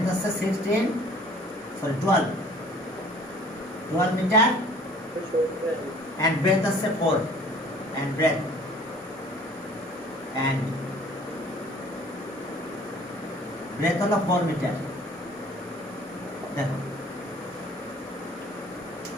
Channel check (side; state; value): both; normal; correlation 0.51